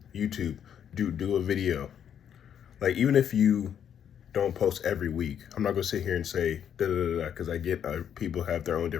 YouTube, do a video. Like, even if you don't post every week, I'm not gonna sit here and say da da da da, because I get people have their own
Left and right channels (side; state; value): right; quieter; 8.9 dB